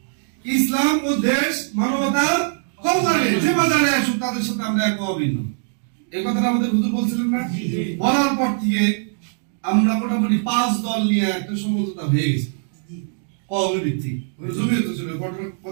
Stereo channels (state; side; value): silent; left; 65 dB below the other